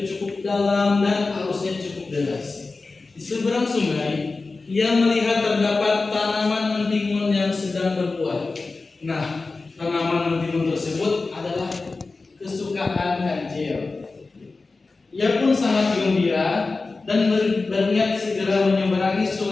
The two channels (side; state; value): right; quieter; 3.8 dB